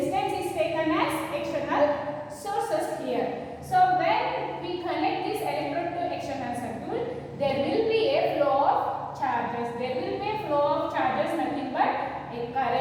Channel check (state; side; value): identical; both; correlation 1.00